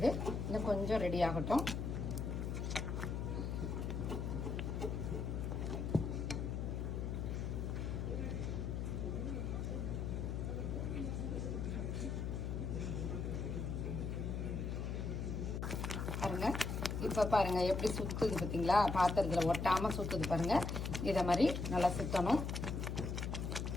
இன்னும் கொஞ்சம் ரெடி ஆகட்டும். பாருங்க, இப்போ பாருங்க எப்படி சுத்துது பார்த்தீங்களா. பாத்திரத்தில் ஒட்டாமல் சுத்துது பாருங்க. இதை மாதிரி நல்லா சுத்தணும்.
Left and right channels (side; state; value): left; noise; hum, 2 dB below the sound